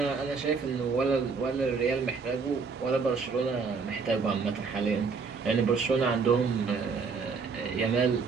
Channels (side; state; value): left; quieter; 5.0 dB